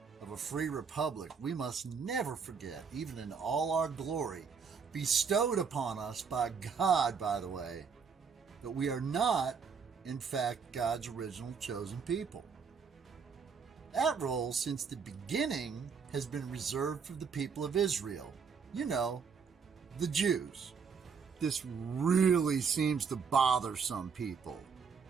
of a free republic, we must never forget, even in all our glory, bestowed upon us by God, by the way, that we are not, in fact, God's original chosen people. That role, since the beginning, has been reserved for the people of Israel. You know, the Jews. This really seems to bother some people.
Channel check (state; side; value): quieter; left; 5.9 dB